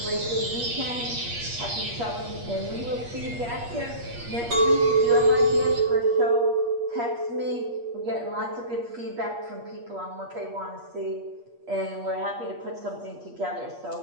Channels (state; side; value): late; left; 8.4 ms